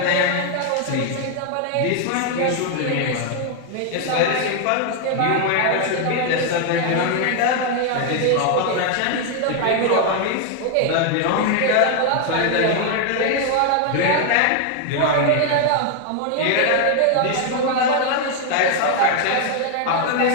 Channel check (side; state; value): both; different; correlation 0.00